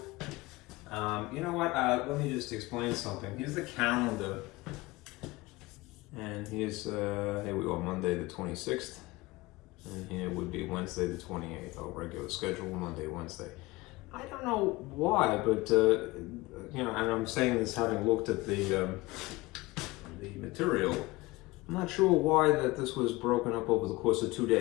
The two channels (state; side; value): quieter; right; 21.1 dB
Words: You know what? Let me just explain something. Here's the calendar, and here's here we are, Monday the 26th, and here would be Wednesday the 28th. Our regular schedule, Monday, Wednesday. I don't know why, but you know, and I'm saying this having looked at the material. I'm not sure why that this was broken up over the course of 2